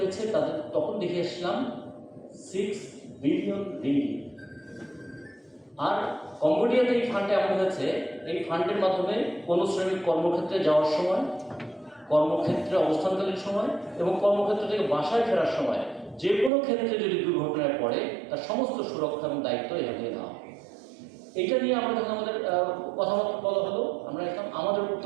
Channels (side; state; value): left; drops out; at 16.5 s